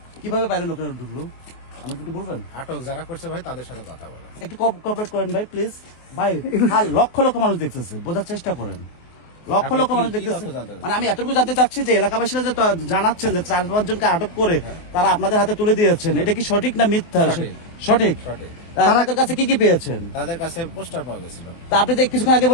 কিভাবে বাইরের লোকেরা ঢুকলো আমাকে একটু বলবেন? আটক যারা করছে ভাই তাদের সাথে কথা বলেন। একটু কোঅপারেট করেন ভাই প্লিজ। ভাই লক্ষ লক্ষ মানুষ দেখতেছে, বোঝার চেষ্টা করেন। লক্ষ লক্ষ মানুষ দেখতেছে, মানে আমি এতটুকু জানতে চাচ্ছি যে এলাকাবাসীরা যে জানাচ্ছেন যে 4-5 জনকে আটক করে তারা আপনাদের হাতে তুলে দিয়েছেন, এটা কি সঠিক না মিথ্যা? সঠিক। তাদের কাছে কি কি পেয়েছেন? তাদের কাছে পোস্টার পাওয়া গেছিল। তা আপনি যে কিছুক্ষণ আগে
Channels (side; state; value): right; late; 23 ms